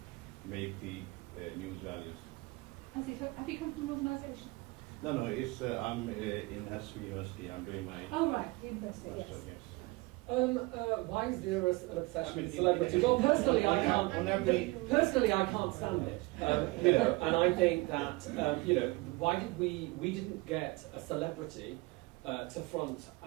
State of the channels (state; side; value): quieter; left; 23.6 dB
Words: make the news values? As if, have you come from an organisation? No, it's I'm in Hasfi University. I'm doing my. Oh right, university. Master, Yes. Why is there an obsession with celebrity? Well, personally, I can't. Personally, I can't stand it. And I think that why did we didn't get a celebrity to front